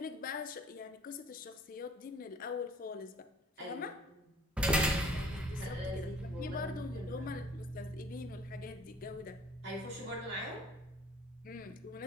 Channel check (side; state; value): both; normal; correlation 0.54